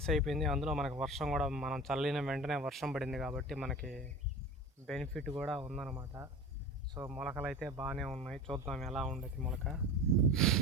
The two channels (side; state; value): both; normal; correlation 0.33